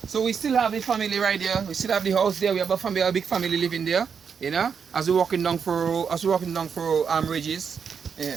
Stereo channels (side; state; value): left; quieter; 6.6 dB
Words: So we still have the family right there. We still have the house there. We have a big family living there. You know, as we're walking down for Reddish.